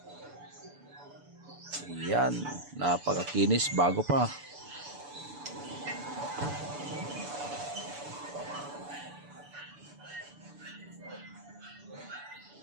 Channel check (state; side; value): late; left; 6.9 ms